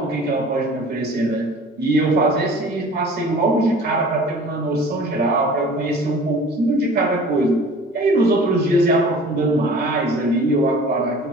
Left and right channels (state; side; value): normal; both; correlation 0.44